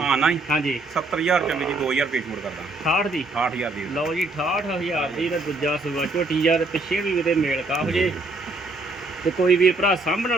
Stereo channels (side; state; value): left; quieter; 3.1 dB